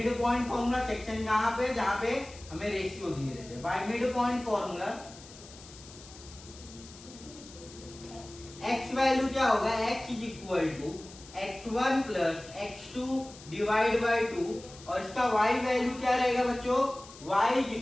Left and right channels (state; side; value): noise; left; hiss, 19 dB below the sound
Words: point formula, section कहाँ पे जहाँ पे हमें रेशियो दिए रहते हैं। By mid point formula x value क्या होगा x is equal to x1 plus x2 divide by 2 और इसका y वैल्यू क्या रहेगा बच्चों y is